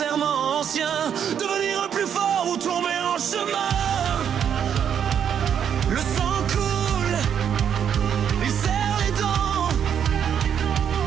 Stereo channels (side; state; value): left; quieter; 8.5 dB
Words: anciens, devenir plus fort ou tomber en chemin. Le sang coule, il serre les dents.